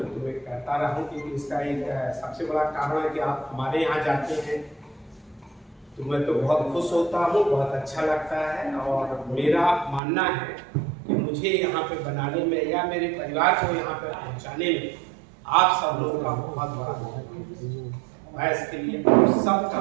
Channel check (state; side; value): drops out; left; at 10.0 s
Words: तुम्हें कहता रहा हूँ क्योंकि इसका एक सबसे बड़ा कारण है कि आप हमारे यहाँ जाते हैं तो मैं तो बहुत खुश होता हूँ, बहुत अच्छा लगता है। और मेरा मानना है कि मुझे यहाँ पे बनाने में या मेरे परिवार को यहाँ पे पहुँचाने में आप सब लोगों का बहुत बड़ा मैं इसके लिए सबका